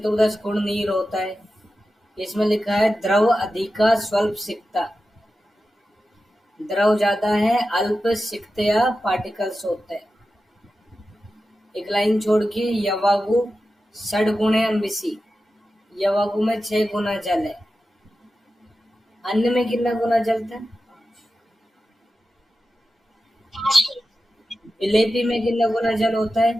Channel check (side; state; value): both; normal; correlation 0.92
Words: गुण नीर होता है। इसमें लिखा है द्रव अधिका स्वल्प सिक्ता, द्रव ज्यादा है, अल्प सिक्तया पार्टिकल्स होते हैं। एक लाइन छोड़ के यवागु 6 गुणे अम्बिसी, यवागु में 6 गुना जल है। अन्न में कितना गुना जल था, विलेपी में कितना गुना जल होता है,